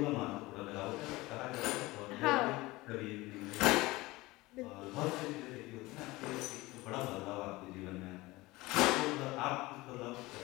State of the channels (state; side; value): quieter; right; 20.6 dB